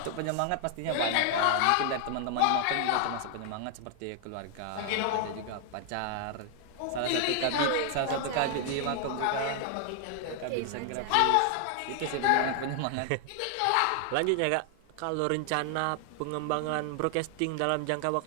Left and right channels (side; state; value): both; different; correlation 0.00